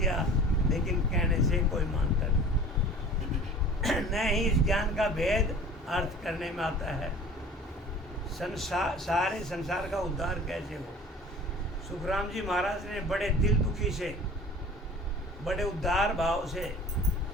लेकिन कहने से कोई मानता नहीं। न ही इस ज्ञान का भेद अर्थ करने में आता है। सारे संसार का उद्धार कैसे हो। सुखराम जी महाराज ने बड़े दिल दुखी से, बड़े उदार भाव से,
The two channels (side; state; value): both; normal; correlation 0.44